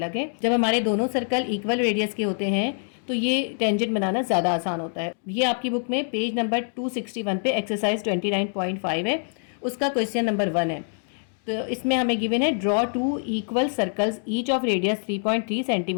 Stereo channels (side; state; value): right; silent; 62 dB below the other